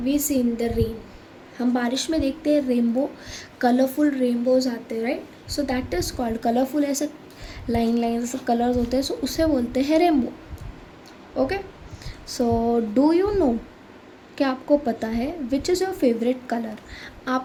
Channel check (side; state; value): both; identical; correlation 1.00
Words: we see in the rain. हम बारिश में देखते हैं rainbow, colourful rainbows आते हैं, right? So that is called colourful, ऐसे line line ऐसे colours होते हैं, सो उसे बोलते हैं rainbow. Okay, so do you know, क्या आपको पता है which is your favourite colour?